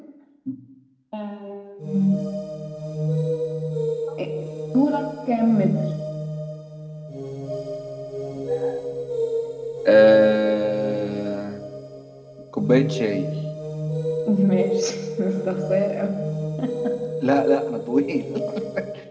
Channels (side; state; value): both; identical; correlation 1.00